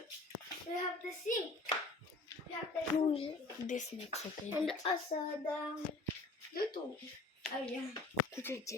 we have the sink. We have the sink. This makes okay. And also the YouTube. Oh yeah.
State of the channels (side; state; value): right; quieter; 3.2 dB